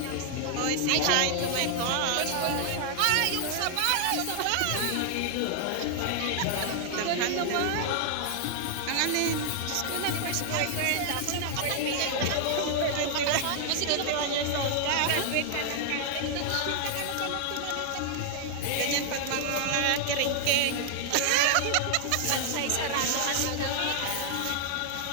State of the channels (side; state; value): both; different; correlation 0.00